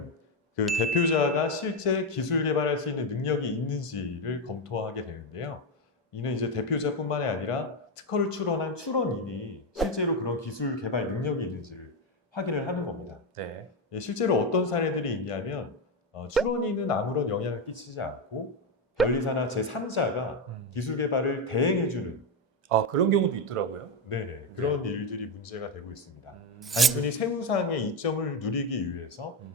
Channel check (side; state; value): both; normal; correlation 0.10